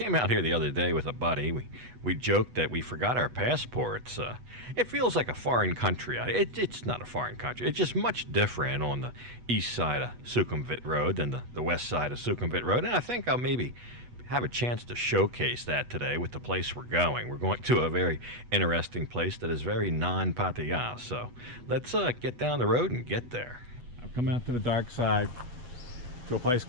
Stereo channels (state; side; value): late; left; 8.2 ms